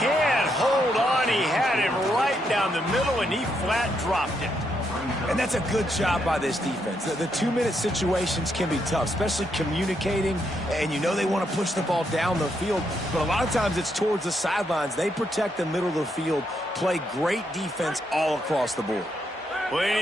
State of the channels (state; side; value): normal; both; correlation 0.78